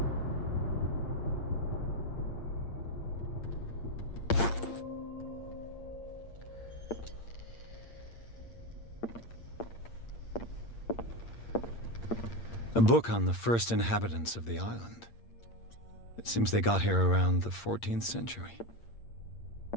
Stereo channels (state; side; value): late; right; 8.7 ms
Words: A book on the first inhabitants of the island. It seems they got here around the 14th century.